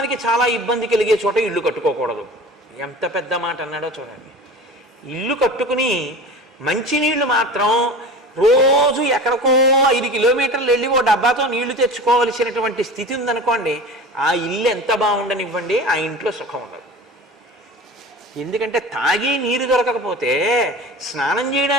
చాలా ఇబ్బంది కలిగే చోట ఇల్లు కట్టుకోకూడదు. ఎంత పెద్ద మాట అన్నాడో చూడండి. ఇల్లు కట్టుకుని మంచినీళ్లు మాత్రం రోజు ఎక్కడికో 5 కిలోమీటర్లు వెళ్ళి ఓ డబ్బాతో నీళ్లు తెచ్చుకోవలసినటువంటి స్థితి ఉందనుకోండి, ఆ ఇల్లు ఎంత బాగుండనివ్వండి, ఆ ఇంట్లో సుఖం ఉండదు. ఎందుకంటే తాగి నీరు దొరకకపోతే, స్నానం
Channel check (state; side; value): normal; both; correlation 0.36